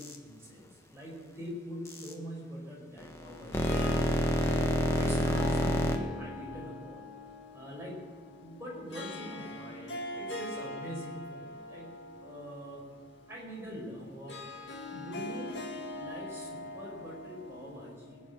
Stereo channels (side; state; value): both; normal; correlation 0.65